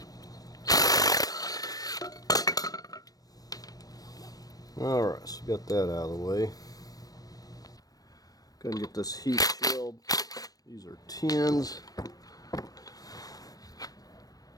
Alright, so got that out of the way. Go ahead and get this heat shield. These are 10s.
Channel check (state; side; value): late; right; 0.18 ms